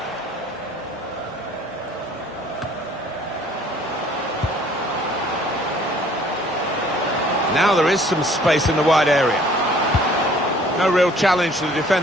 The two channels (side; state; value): both; normal; correlation 0.56